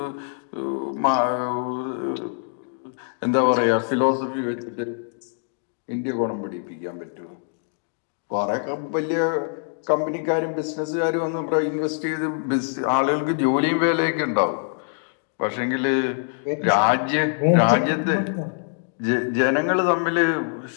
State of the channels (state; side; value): silent; right; 63 dB below the other